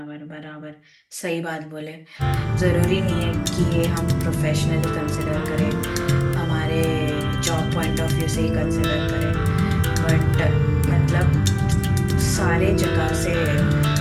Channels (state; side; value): identical; both; correlation 1.00